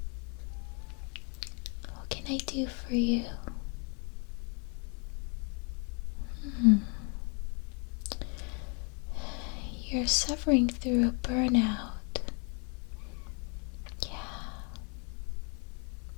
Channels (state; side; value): quieter; right; 36.3 dB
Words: What can I do for you? You're suffering through a burnout. Yeah.